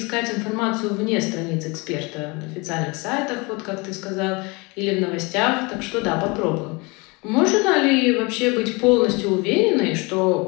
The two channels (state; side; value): quieter; right; 27.2 dB